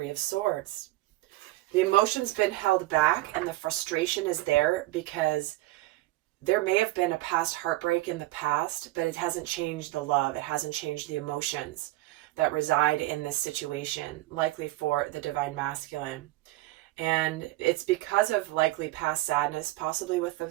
of Swords. The emotion's been held back and the frustration is there because there may have been a past heartbreak in the past, but it hasn't changed the love. It hasn't changed the emotions that reside in this situation, likely for the Divine Masculine. And it's because of likely past sadness, possibly with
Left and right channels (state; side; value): quieter; left; 18.4 dB